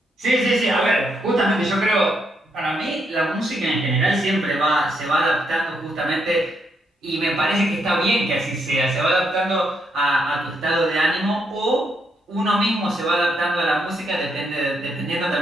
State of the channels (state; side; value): normal; both; correlation 0.77